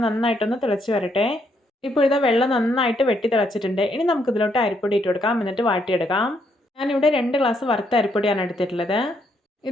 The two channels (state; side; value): normal; both; correlation 0.74